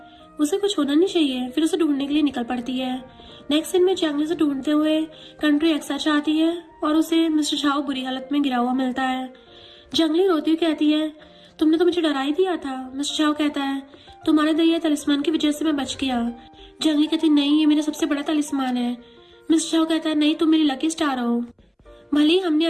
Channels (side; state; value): both; identical; correlation 1.00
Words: उसे कुछ होना नहीं चाहिए। फिर उसे ढूंढने के लिए निकल पड़ती है। नेक्स्ट सीन में जियांगली से ढूंढते हुए कंट्री एक्स आ जाती है और उसे मिस्टर झाओ बुरी हालत में गिरा हुआ मिलता है। जियांगली रोती हुई कहती है तुमने तो मुझे डरा ही दिया था। मिस्टर झाओ कहता है तुम्हारे दिए तालिस्मान की वजह से मैं बच गया। जियांगली कहती नहीं, ये मेरा सबसे बड़ा तालिस्मान है। मिस्टर झाओ कहता है नहीं, तुम मेरी लकी स्टार हो, भले ही हमने